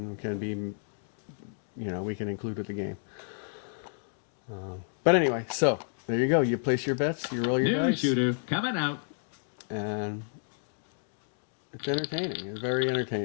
can be, you know, we can include with the game. But anyway, so there you go. You place your bets, you roll your New dice, shooter coming out. and it's entertaining. It's very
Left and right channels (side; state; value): right; silent; digital silence